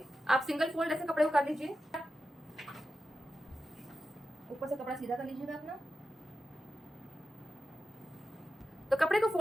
आप सिंगल फोल्ड ऐसे कपड़े को कर लीजिए। ऊपर से कपड़ा सीधा कर लीजिएगा अपना। तो कपड़े को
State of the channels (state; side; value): normal; both; correlation 0.91